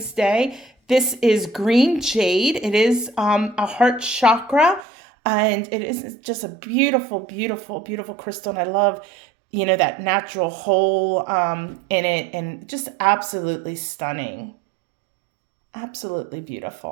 Day. This is green jade. It is a heart chakra, and it is just a beautiful, beautiful, beautiful crystal. And I love, that natural hole in it, and just absolutely stunning. Absolutely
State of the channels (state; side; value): drops out; left; at 4.9 s